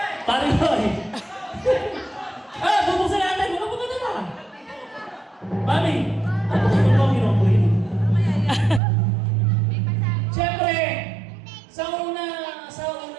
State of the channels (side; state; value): left; drops out; at 8.8 s